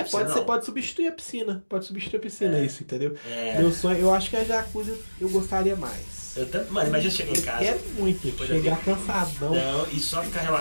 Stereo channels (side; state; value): both; inverted; correlation -1.00